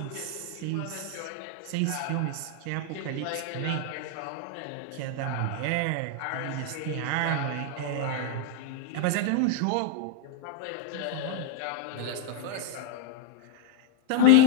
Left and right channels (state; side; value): different; both; correlation 0.00